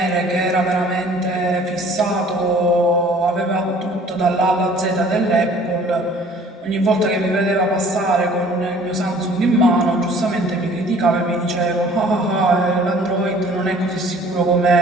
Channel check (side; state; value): both; normal; correlation 0.52